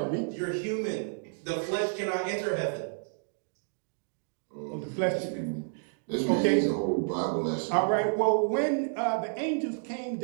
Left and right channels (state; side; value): silent; left; digital silence